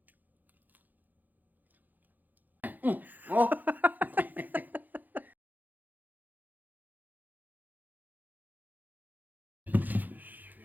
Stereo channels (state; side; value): late; left; 0.084 ms